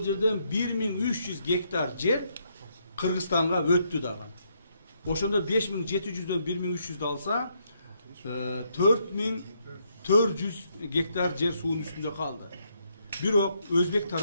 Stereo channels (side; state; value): both; inverted; correlation -0.75